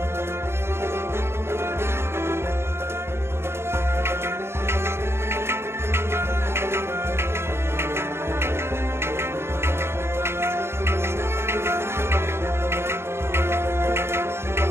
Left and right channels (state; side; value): late; left; 0.12 ms